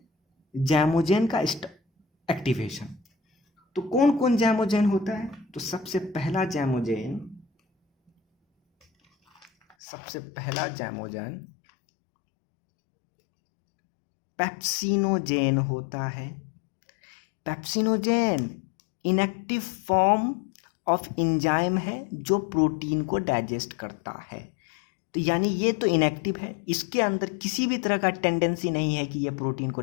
जैमोजेन का एक्टिवेशन, तो कौन कौन जैमोजेन होता है? तो सबसे पहला जैमोजेन पेप्सिनोजेन होता है। Pepsinogen inactive form of enzyme है जो प्रोटीन को डाइजेस्ट करता है। तो यानी ये तो इनएक्टिव है, इसके अंदर किसी भी तरह का टेंडेंसी नहीं है कि ये प्रोटीन को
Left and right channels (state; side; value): drops out; right; at 9.8 s